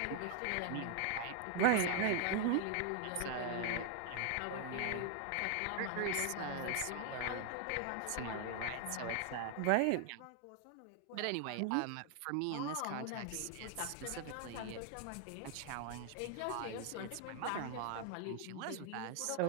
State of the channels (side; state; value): both; different; correlation 0.00